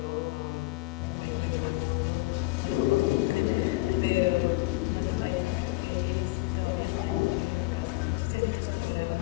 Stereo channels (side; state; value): right; quieter; 21.7 dB